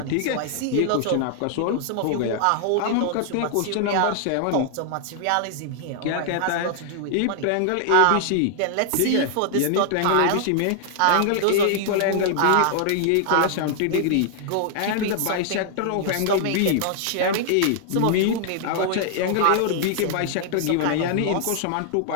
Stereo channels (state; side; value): different; both; correlation -0.01